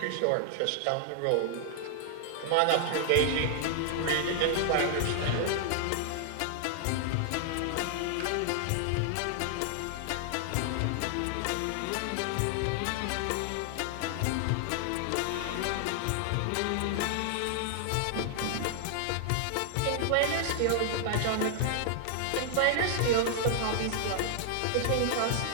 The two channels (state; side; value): different; both; correlation 0.00